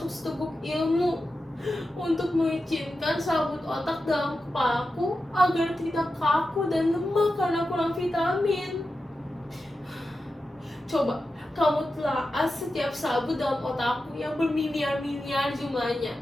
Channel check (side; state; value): both; normal; correlation 0.91